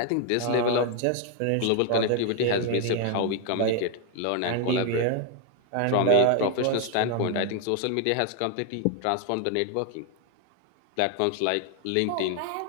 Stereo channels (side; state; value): both; different; correlation 0.00